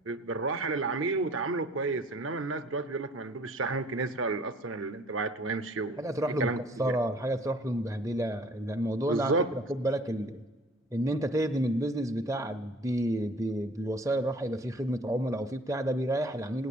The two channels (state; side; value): normal; both; correlation 0.52